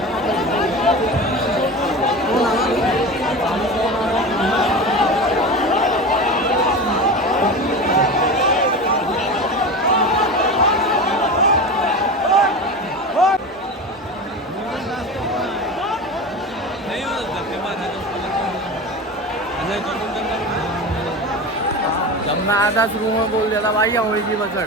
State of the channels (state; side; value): normal; both; correlation 0.28